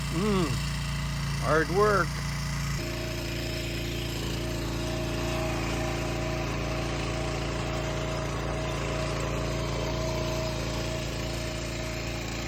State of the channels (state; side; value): identical; both; correlation 1.00